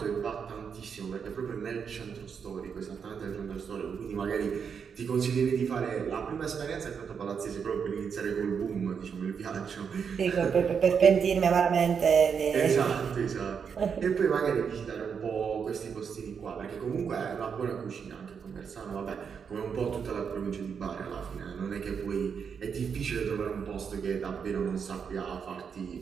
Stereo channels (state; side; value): quieter; left; 6.6 dB